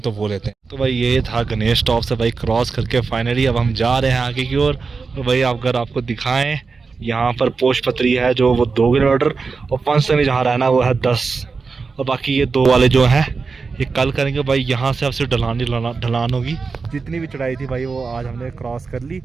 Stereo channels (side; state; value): left; quieter; 4.6 dB